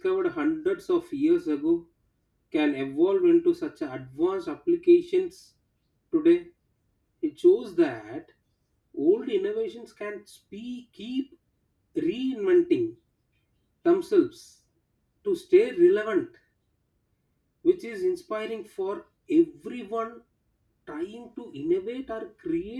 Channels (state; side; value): identical; both; correlation 1.00